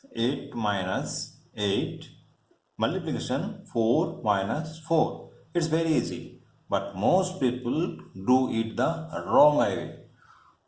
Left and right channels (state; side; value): identical; both; correlation 1.00